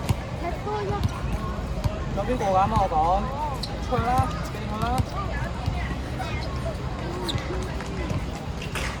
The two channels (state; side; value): identical; both; correlation 1.00